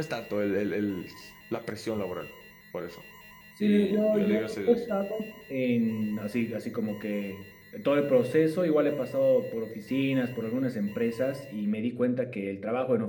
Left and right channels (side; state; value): both; identical; correlation 1.00